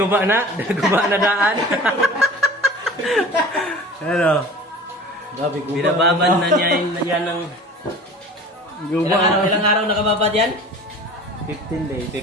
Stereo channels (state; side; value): normal; both; correlation 0.41